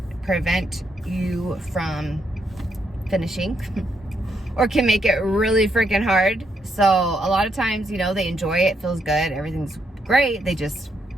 prevent you from finishing or can make it really freaking hard. So a lot of times, you know, they enjoy it, feels good, everything's great, they just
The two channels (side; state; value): both; normal; correlation 0.77